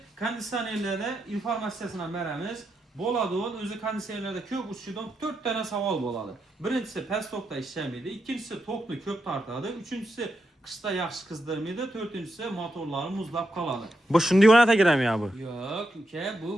kondisyonerlərdə informasiyasına verəmiz. Boladığın özü kondisyonerlərdə kök uçudan 4 tane saval boladı. Birincisi pestokda işlemiydi, ikincisi toklu kök tartadı, üçüncüsü kışta yaxşı kızdırmıydı, dördüncüsü motorları muzlap kaladı. Bu şimdi varianta girem ya bu. Yok,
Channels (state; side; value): normal; both; correlation 0.84